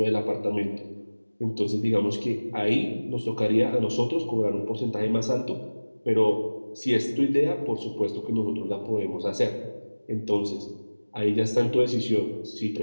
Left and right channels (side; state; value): both; inverted; correlation -1.00